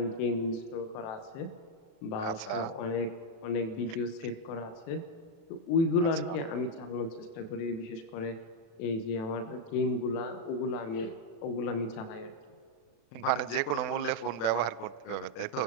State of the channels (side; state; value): right; late; 36 ms